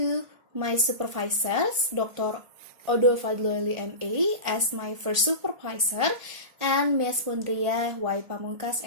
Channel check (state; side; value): late; left; 1.5 ms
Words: my supervisors, Dr. Odo Fadloeli M.A. as my first supervisor, and Ms. Mundriyah Y. Pamungkas